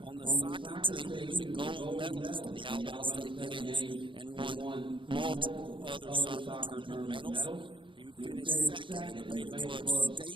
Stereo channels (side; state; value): left; late; 0.24 ms